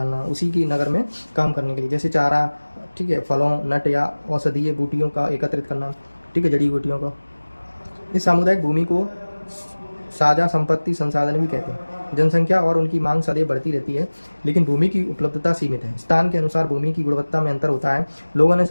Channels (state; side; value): inverted; both; correlation -1.00